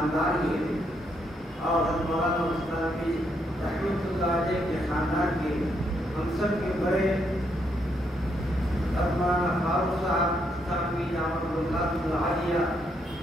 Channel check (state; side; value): normal; both; correlation 0.76